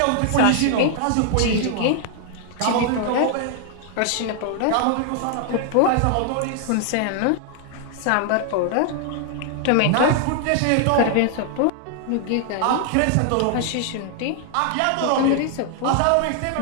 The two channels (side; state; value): both; different; correlation 0.00